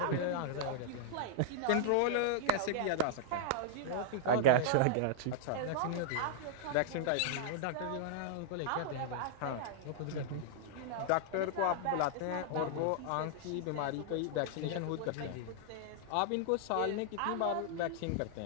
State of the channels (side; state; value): both; different; correlation -0.01